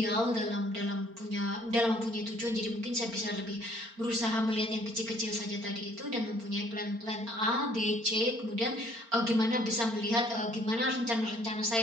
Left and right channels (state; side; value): late; left; 4.4 ms